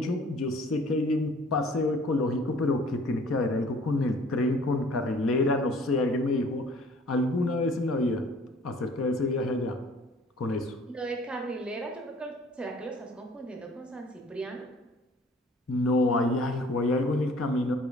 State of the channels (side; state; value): both; normal; correlation 0.53